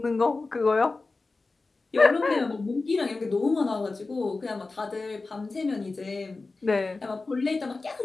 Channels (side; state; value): right; quieter; 3.6 dB